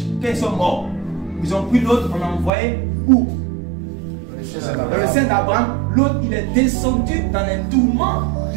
quand ils sont morts, ils ont pris l'autre, on a envoyé où? Dans le sein d'Abraham. L'autre, il est descendu dans les tourments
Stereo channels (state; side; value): drops out; left; at 2.5 s